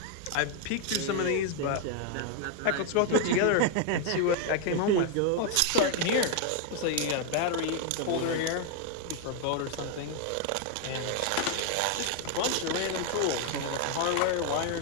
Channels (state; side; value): different; both; correlation 0.00